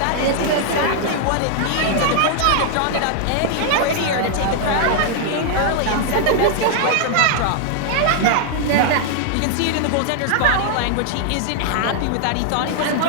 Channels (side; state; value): both; different; correlation -0.01